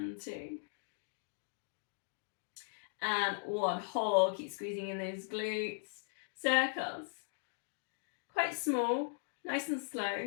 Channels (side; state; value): right; silent; digital silence